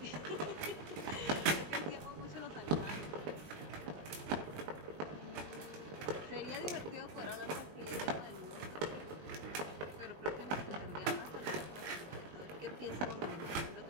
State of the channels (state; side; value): late; left; 19 ms